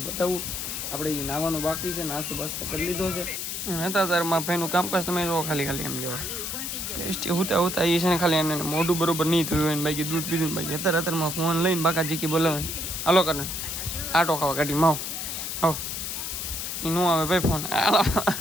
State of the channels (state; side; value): noise; left; hiss, 4 dB below the sound